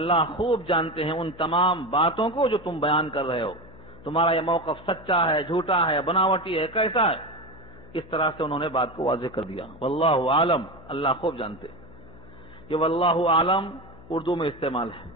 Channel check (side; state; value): left; noise; hum, 20 dB below the sound